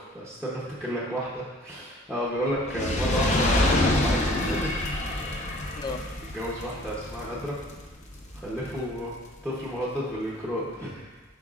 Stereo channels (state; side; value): normal; both; correlation 0.52